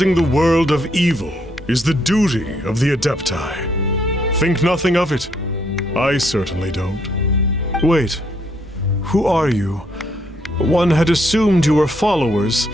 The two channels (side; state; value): both; normal; correlation 0.72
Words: the world of evil is the duty of the adepti. Think nothing of it. I certainly don't. Wait, who are you? One had assumed you were followers,